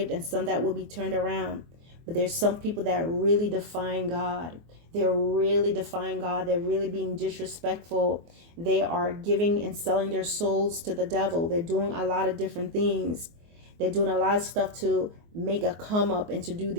and some that will be turned around. But there's some people that are really defying God. They're really defying God. They're really being disrespectful. They are giving and selling their souls to the devil. They're doing a lot of different things. They're doing a lot of stuff to make a come up and to do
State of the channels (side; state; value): left; late; 24 ms